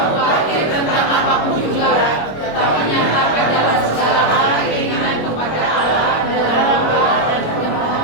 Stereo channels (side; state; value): right; late; 26 ms